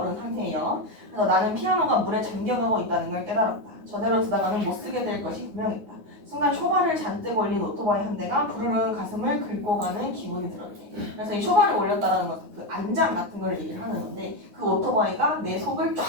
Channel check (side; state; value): left; late; 9.6 ms